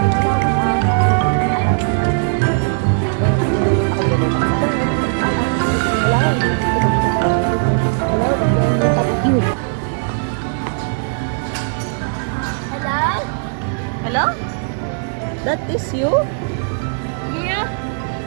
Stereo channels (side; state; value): left; silent; 67 dB below the other